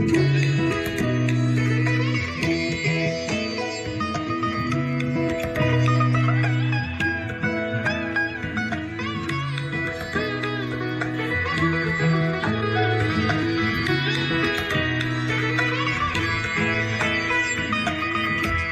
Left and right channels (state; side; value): identical; both; correlation 1.00